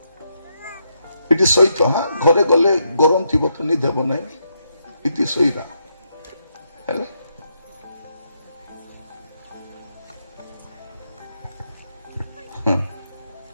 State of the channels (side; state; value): both; inverted; correlation -0.80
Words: ଏଠି ସହିତ ହଁ ଘରେ ଗଲେ ଗରମ ଥିବ ତ ନିଦ ହେବ ନାହିଁ ଏଠି ଶୋଇବା ହେଲା